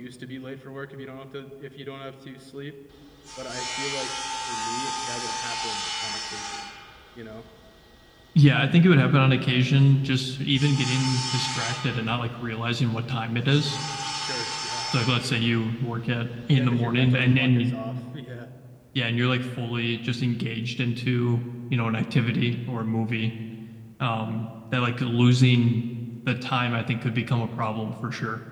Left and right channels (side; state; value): both; identical; correlation 1.00